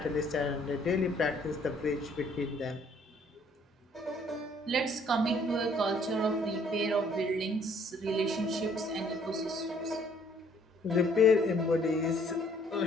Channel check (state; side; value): normal; both; correlation 0.62